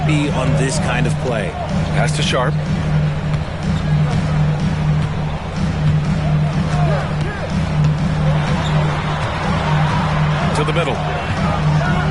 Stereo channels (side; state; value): both; identical; correlation 1.00